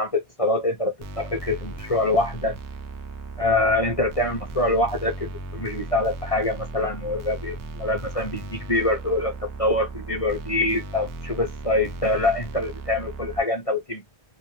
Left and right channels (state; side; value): late; right; 1.6 ms